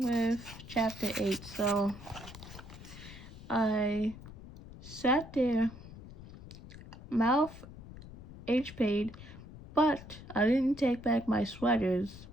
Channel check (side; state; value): left; noise; rumble, 15 dB below the sound